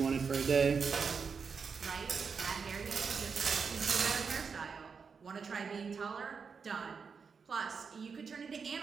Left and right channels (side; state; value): left; quieter; 5.7 dB